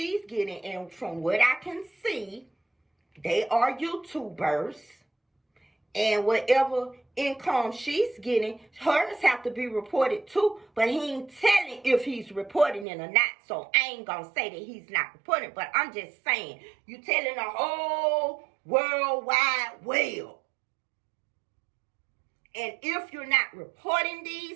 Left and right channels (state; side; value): drops out; left; at 12.9 s